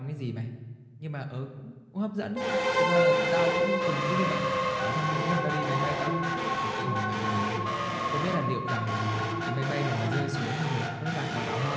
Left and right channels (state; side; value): identical; both; correlation 1.00